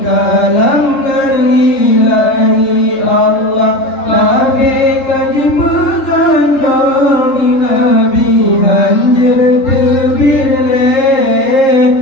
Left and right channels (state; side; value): late; right; 3.7 ms